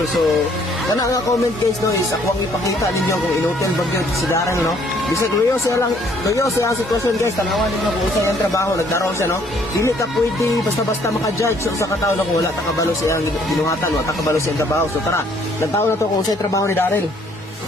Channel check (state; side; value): normal; both; correlation 0.63